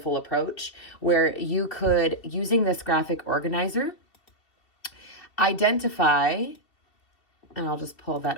approach where you could, using this graphic organizer, identify, and I'll just pull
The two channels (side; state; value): right; late; 2.7 ms